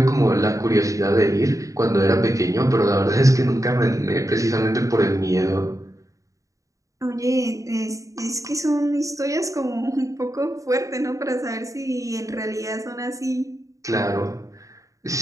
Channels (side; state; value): left; late; 0.16 ms